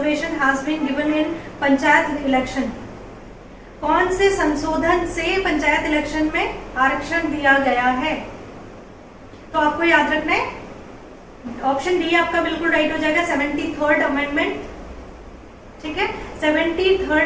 has been given in panchayat election. कौन से संशोधन से पंचायत इलेक्शन में आरक्षण दिया गया है, तो आपको याद रखना है। ऑप्शन डी आपका बिल्कुल राइट हो जाएगा, 73rd अमेंडमेंट। ठीक है,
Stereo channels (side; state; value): both; identical; correlation 1.00